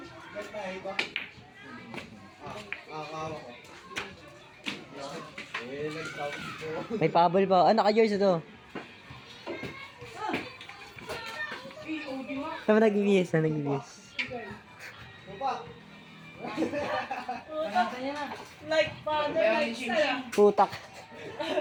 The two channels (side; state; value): both; identical; correlation 1.00